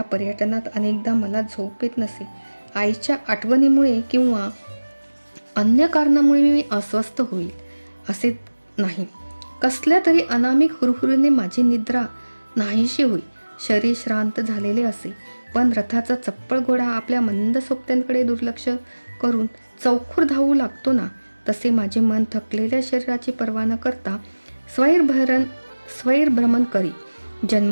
पर्यटनात अनेकदा मला झोप येत नसे. आईच्या आठवणीमुळे किंवा अन्य कारणामुळे मी अस्वस्थ होईल असे नाही. कसल्या तरी अनामिक हुरहुरीने माझी निद्रा नाहीशी होई. शरीर श्रांत झालेले असे, पण रथाचा चप्पळ घोडा आपल्या मंद सोबत्यांकडे दुर्लक्ष करून चौखूर धावू लागतो ना, तसे माझे मन थकलेल्या शरीराची पर्वा न करता स्वैरभ्रमण करी.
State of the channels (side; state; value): both; inverted; correlation -1.00